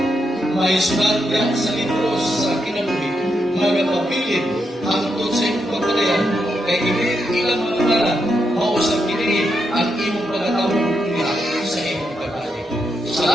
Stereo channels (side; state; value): both; normal; correlation 0.83